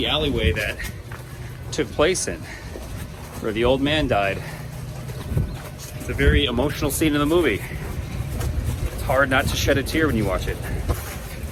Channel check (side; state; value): both; identical; correlation 1.00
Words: alleyway that took place in, where the old man died. It's a very emotional scene in the movie. It's hard not to shed a tear when you watch it.